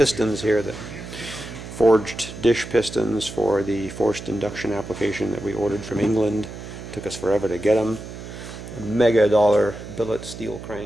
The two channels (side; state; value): right; noise; hum, 11 dB below the sound